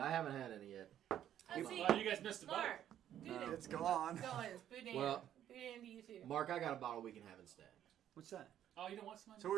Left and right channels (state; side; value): quieter; left; 10.9 dB